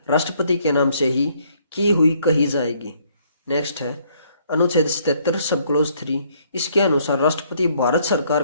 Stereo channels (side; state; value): both; inverted; correlation -0.66